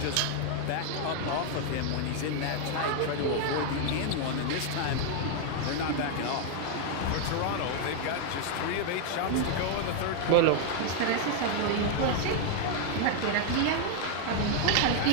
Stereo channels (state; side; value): different; both; correlation 0.00